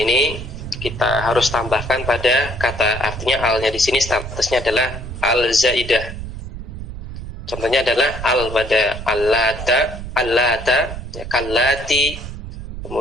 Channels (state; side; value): noise; right; rumble, 9 dB below the sound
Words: kita harus tambahkan pada kata, artinya alnya di sini statusnya adalah al zaidah. Contohnya adalah al pada allata, ya, kallati,